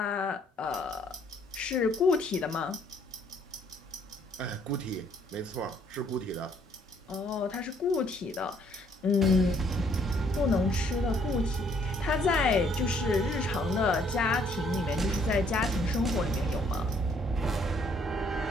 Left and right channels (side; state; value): both; normal; correlation 0.65